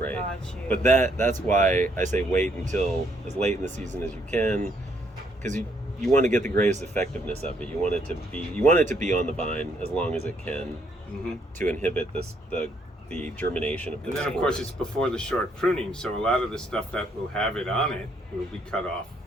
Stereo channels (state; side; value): normal; both; correlation 0.70